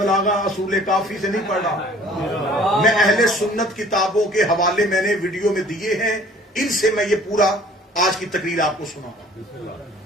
اصول کافی سے نہیں پڑھ رہا، میں اہل سنت کتابوں کے حوالے میں نے ویڈیو میں دیے ہیں، ان سے میں یہ پورا آج کی تقریر آپ کو سناؤں گا۔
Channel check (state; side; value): normal; both; correlation 0.52